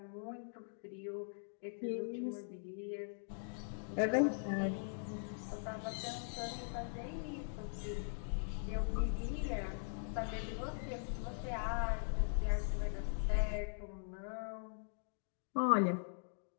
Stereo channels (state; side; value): silent; right; digital silence